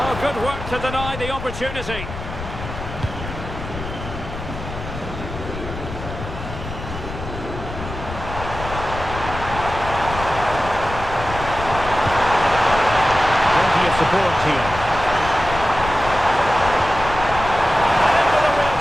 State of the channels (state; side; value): noise; left; rumble, 9 dB below the sound